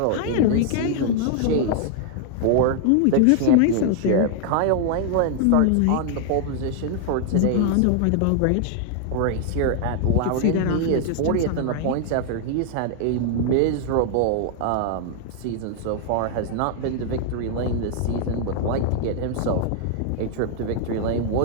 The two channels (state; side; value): different; both; correlation 0.00